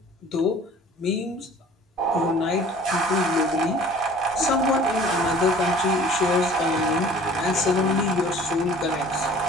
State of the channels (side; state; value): both; normal; correlation 0.48